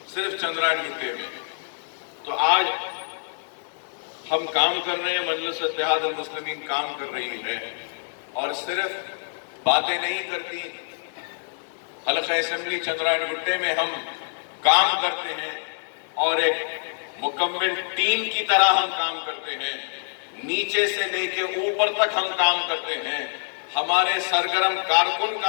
सिर्फ चंद्रायन गुट्टे में। तो आज हम काम कर रहे हैं, मजलिस इत्तेहाद अल मुस्लिमीन काम कर रही है और सिर्फ बातें नहीं करती। हल्क़े असेंबली चंद्रायन गुट्टे में हम काम करते हैं और एक मुकम्मल टीम की तरह हम काम करते हैं। नीचे से लेके ऊपर तक हम काम करते हैं। हमारे सरगर्म कारकुन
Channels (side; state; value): right; silent; 61 dB below the other